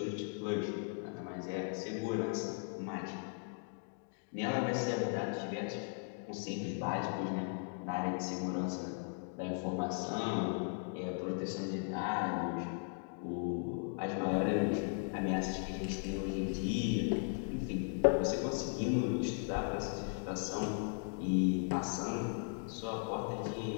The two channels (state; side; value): silent; right; 53 dB below the other